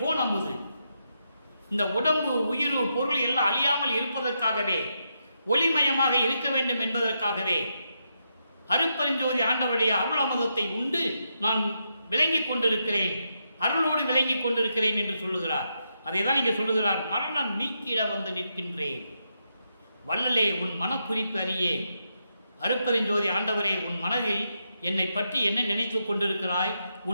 அமுது. இந்த உடம்பு, உயிர், பொருள் எல்லாம் அழியாமல் இருப்பதற்காகவே, ஒளிமயமாக இருக்க வேண்டும் என்பதற்காகவே அருட்பெருஞ்சோதி ஆண்டவருடைய அருள் அமுதத்தை உண்டு நான் விளங்கிக் கொண்டிருக்கிறேன், அருளோடு விளங்கிக் கொண்டிருக்கிறேன் என்று சொல்லுகிறார். அதை தான் இங்கே சொல்லுகிறார். மரணம் நீக்கிட நிற்கின்றேன். வள்ளலே உன் மனக்குறிப்பு அறியே. அருட்பெருஞ்சோதி ஆண்டவரே, உன் மனதில் என்னை பற்றி என்ன நினைத்து கொண்டிருக்கிறாய்,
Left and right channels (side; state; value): both; inverted; correlation -0.82